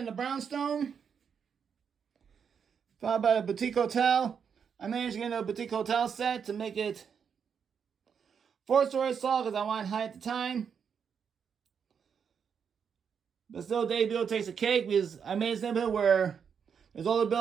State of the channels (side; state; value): left; quieter; 7.0 dB